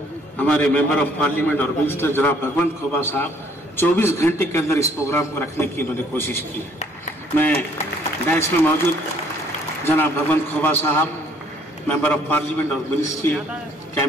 हमारे मेंबर ऑफ पार्लियामेंट और मिनिस्टर जनाब भगवंत खोबा साहब 24 घंटे के अंदर इस प्रोग्राम को रखने की इन्होंने कोशिश की है। मैं डैश में मौजूद जनाब भगवंत खोबा साहब, मेंबर ऑफ पार्लियामेंट और मिनिस्ट्री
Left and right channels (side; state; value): both; normal; correlation 0.62